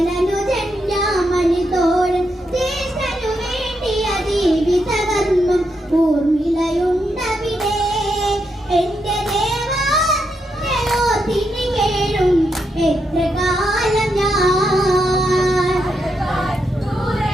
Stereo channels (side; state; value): both; normal; correlation 0.82